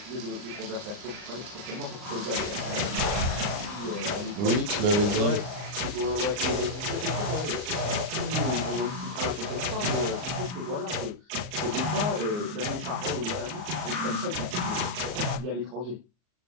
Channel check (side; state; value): left; late; 39 ms